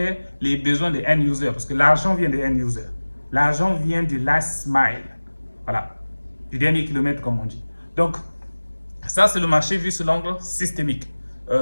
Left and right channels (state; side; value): inverted; both; correlation -1.00